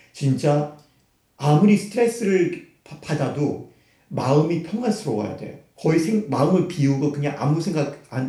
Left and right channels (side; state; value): both; identical; correlation 1.00